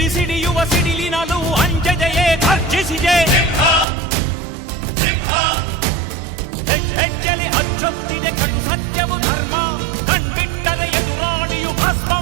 ಸಿಡಿಯುವ ಸಿಡಿಲಿನಲು ಅಂಜದೆಯೇ ಗರ್ಜಿಸಿದೆ. ಹೆಜ್ಜೆಲಿ ಅಚ್ಚೊತ್ತಿದೆ ಕಟು ಸತ್ಯವು ಧರ್ಮ, ಕಣ್ಬಿಟ್ಟರೆ ಎದುರಾಳಿಯು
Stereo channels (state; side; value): drops out; left; at 3.9 s